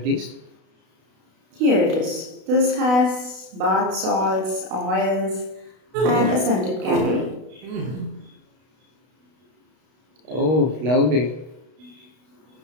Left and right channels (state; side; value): late; left; 32 ms